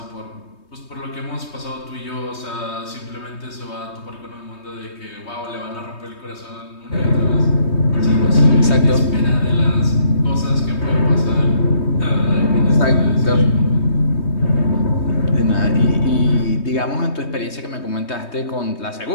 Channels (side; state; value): right; late; 3.2 ms